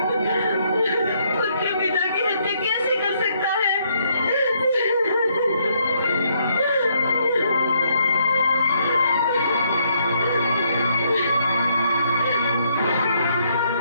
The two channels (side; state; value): both; inverted; correlation -0.72